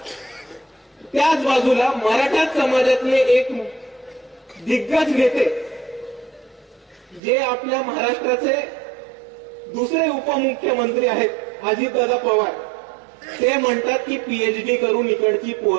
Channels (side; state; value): left; drops out; at 7.2 s